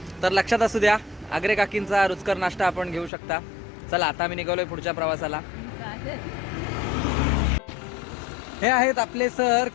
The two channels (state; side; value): drops out; right; at 3.1 s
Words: तर लक्षात असू द्या, आग्रे काकींचा रुचकर नाश्ता आपण घेऊ शकता. चला आता आम्ही निघालोय पुढच्या प्रवासाला. हे आहेत आपले सर